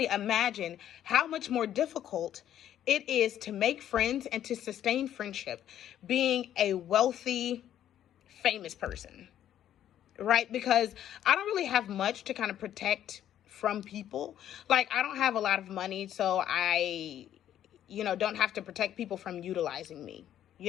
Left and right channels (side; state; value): right; quieter; 11.0 dB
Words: imagine how much more difficult it is to make friends and to sustain friendship being a wealthy, famous person, right? Because I don't really have much to kind of protect from people. Like, I don't have a lot of money, so I, don't have to protect people from utilizing me.